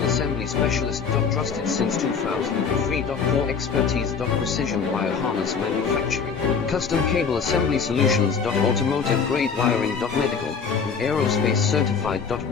assembly specialist. Trusted since 2003. Core expertise. Precision wire harness manufacturing. Custom cable assembly solutions. Automotive grade wiring. Medical and aerospace certified.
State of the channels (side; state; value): right; quieter; 6.0 dB